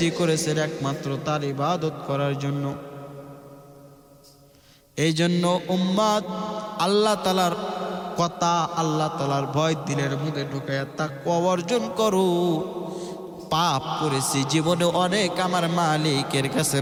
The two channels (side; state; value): both; identical; correlation 1.00